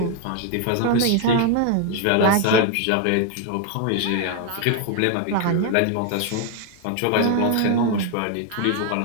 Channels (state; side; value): different; both; correlation 0.01